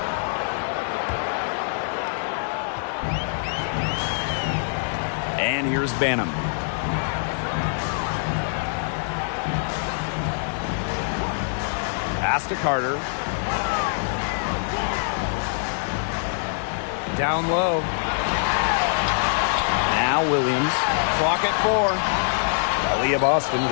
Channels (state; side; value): silent; right; 62 dB below the other